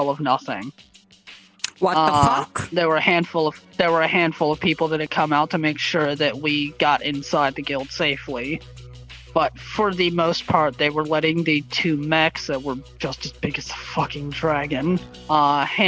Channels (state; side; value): identical; both; correlation 1.00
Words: of nothing. What the fuck? There were a handful of people that had come out to make sure that we got inside the guild safely. But for the most part, they were letting the 2 mechs that were just as big as the fucking dragon